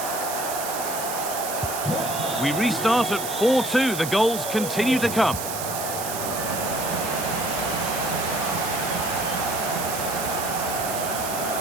We restart at 4-2. The goals continue to come.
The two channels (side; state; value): right; noise; hiss, 6 dB below the sound